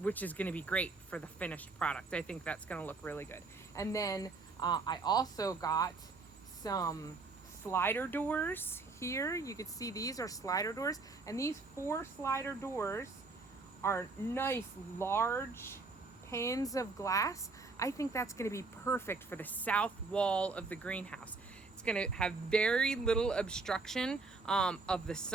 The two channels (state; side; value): quieter; left; 3.9 dB